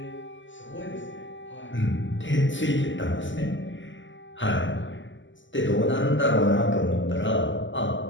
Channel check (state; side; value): late; right; 0.55 ms